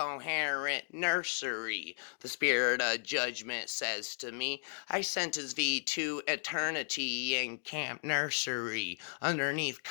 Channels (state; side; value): silent; right; digital silence